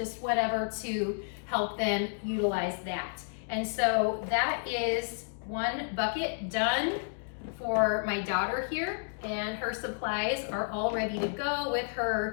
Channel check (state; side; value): silent; right; digital silence